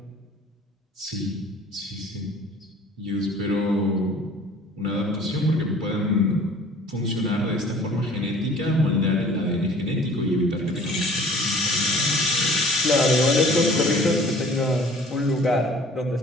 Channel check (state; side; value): normal; both; correlation 0.50